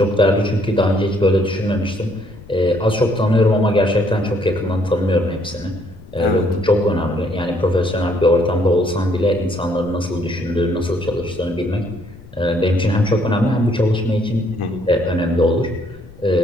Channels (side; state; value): left; noise; rumble, 20 dB below the sound